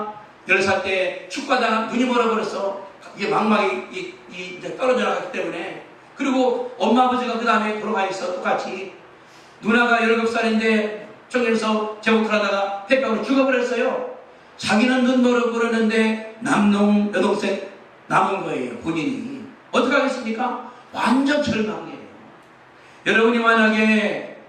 10살 때 축구하다가 눈이 멀어버려서 이게 망막이 이제 떨어져 나갔기 때문에, 그리고 엄마 아버지가 그 다음에 돌아가 있어. 똑같이 누나가 17살인데 청년에서 제복을 하다가 폐병으로 죽어버렸어요. 자기는 눈 멀어버렸는데 남동 여동생 남은 거예요. 본인이 어떻게 하겠습니까? 완전 절망이에요. 여러분이 만약에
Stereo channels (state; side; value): identical; both; correlation 1.00